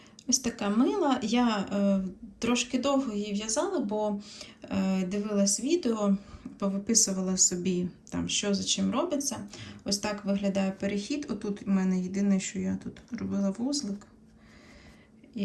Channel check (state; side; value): identical; both; correlation 1.00